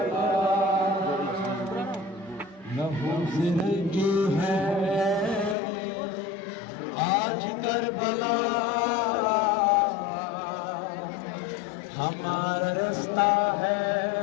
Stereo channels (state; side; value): drops out; right; at 5.6 s